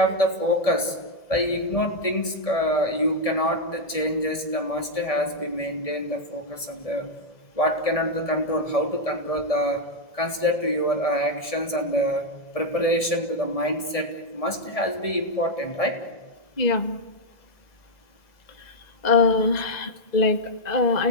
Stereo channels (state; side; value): late; right; 1.7 ms